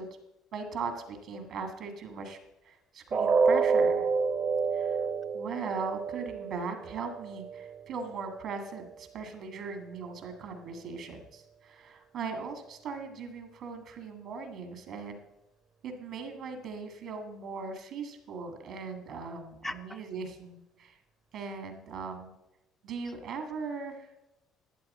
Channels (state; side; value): quieter; left; 4.5 dB